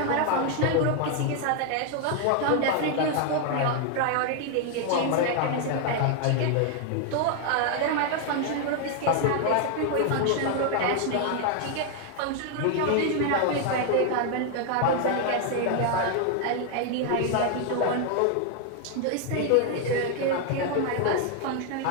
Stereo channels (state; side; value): different; both; correlation 0.00